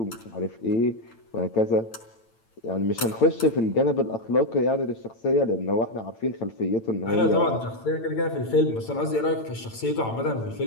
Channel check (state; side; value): late; right; 8.9 ms